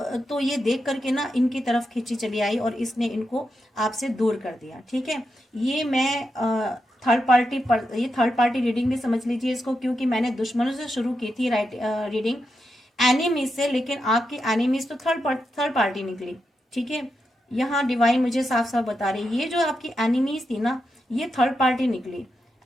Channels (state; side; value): normal; both; correlation 0.86